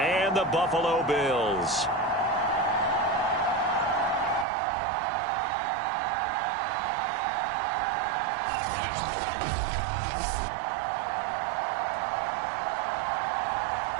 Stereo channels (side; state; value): left; drops out; at 4.5 s